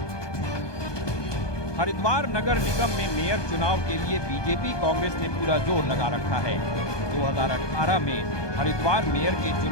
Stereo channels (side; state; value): right; late; 1.2 ms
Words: हरिद्वार नगर निगम में मेयर चुनाव के लिए बीजेपी कांग्रेस ने पूरा जोर लगा रखा है। 2018 में हरिद्वार मेयर के